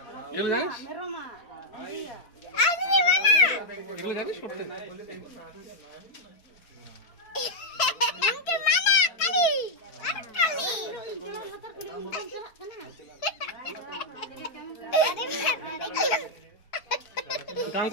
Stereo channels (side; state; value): right; late; 4.5 ms